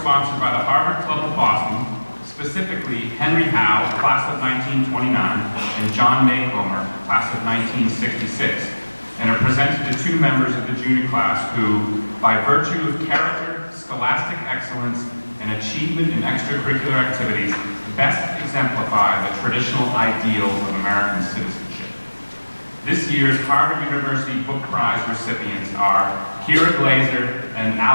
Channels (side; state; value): both; inverted; correlation -1.00